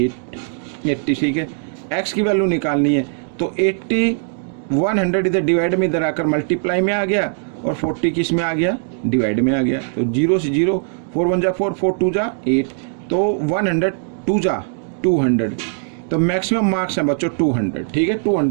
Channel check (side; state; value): left; silent; digital silence